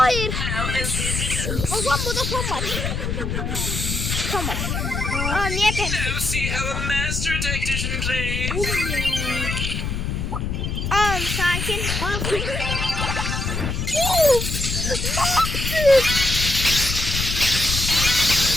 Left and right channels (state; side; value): noise; left; rumble, 2 dB below the sound